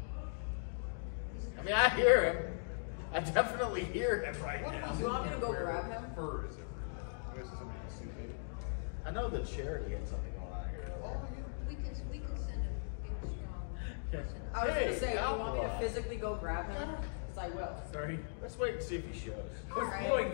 I mean, I hear him. I definitely hear him right now. Do you want me to go grab him? Fur is it? I guess it's somebody can sue me. I know that Charity had something going on here. We can send a big strong person. I was Hey, going to say, do you want me to Alkali. physically go grab him? Because I will. Sorry. Let's wait and see if he shows. It was going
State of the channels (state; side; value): silent; right; digital silence